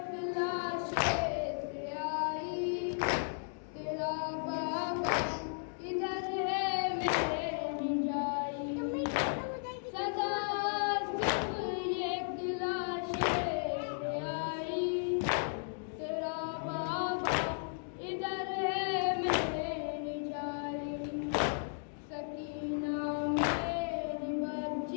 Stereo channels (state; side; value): silent; right; digital silence